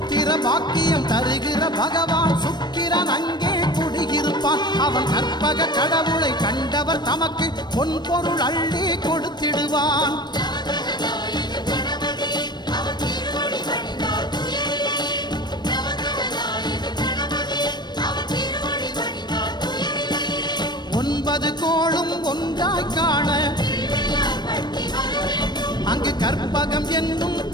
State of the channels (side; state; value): right; late; 0.21 ms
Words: பாக்கியம் தருகிற பகவான் சுக்கிரன் அங்கே குடியிருப்பான். அவன் கற்பக கடவுளை கண்டவர் தமக்கு பொன் பொருள் அள்ளி கொடுத்திடுவான். ஒன்பது கோளும் ஒன்றாய் காண அங்கு கற்பகம் என்னும்